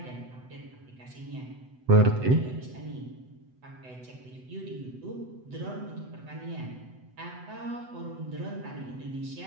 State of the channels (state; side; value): late; left; 8.0 ms